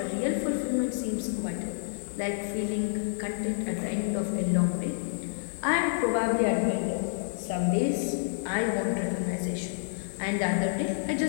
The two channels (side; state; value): right; silent; 59 dB below the other